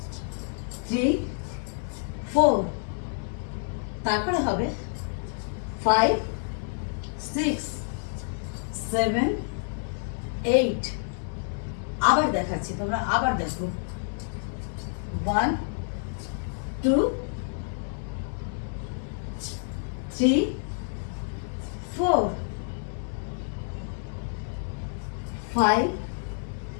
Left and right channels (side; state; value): right; silent; 59 dB below the other